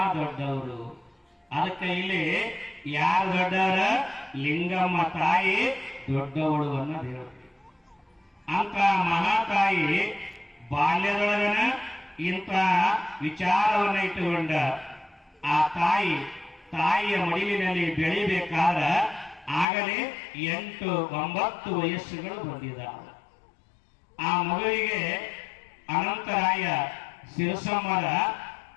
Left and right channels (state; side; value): drops out; right; at 19.7 s